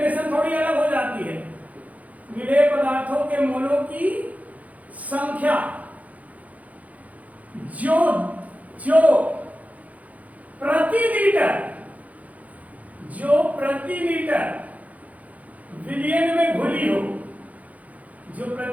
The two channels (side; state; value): left; late; 0.072 ms